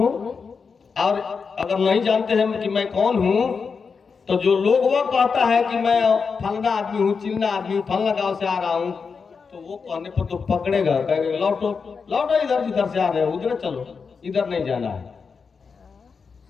और अगर नहीं जानते हैं कि मैं कौन हूं, तो जो लोग वो कहता है कि मैं फलना आदमी हूं, चिल्ला आदमी हूं, फलना गांव से आ रहा हूं, तो वो कहने पर तो पकड़ेगा, कहेगा लौटो लौटो, इधर जिधर से आ रहे हो उधर चलो, इधर नहीं जाना है।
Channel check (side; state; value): right; quieter; 5.4 dB